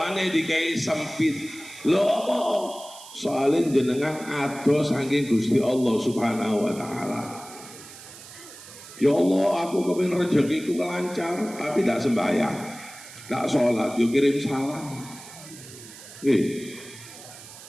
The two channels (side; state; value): right; noise; hiss, 17 dB below the sound